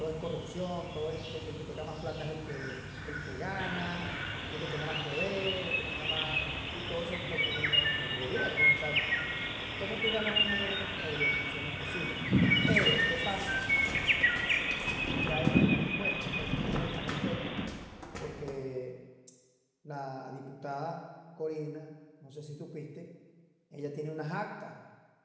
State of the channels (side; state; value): both; identical; correlation 1.00